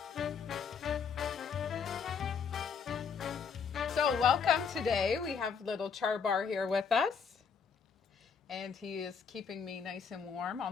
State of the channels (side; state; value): right; quieter; 6.2 dB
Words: So welcome today. We have little Charbar here with us. And he is keeping me nice and warm